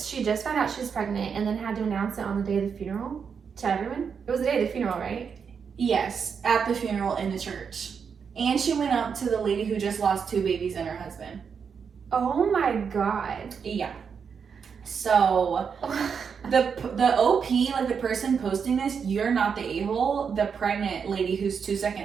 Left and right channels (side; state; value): left; quieter; 6.4 dB